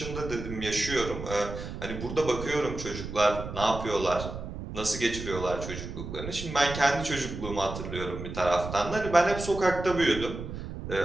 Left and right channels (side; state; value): right; noise; rumble, 8 dB below the sound